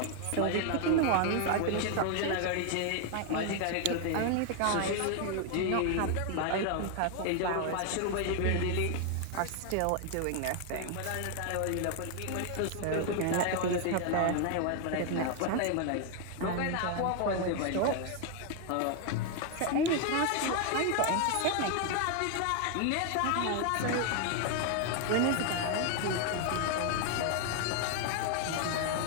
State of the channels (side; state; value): both; different; correlation 0.00